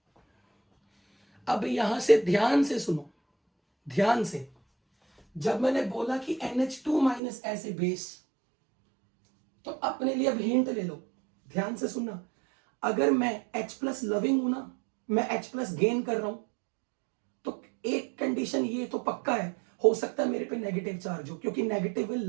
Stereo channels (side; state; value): left; drops out; at 7.2 s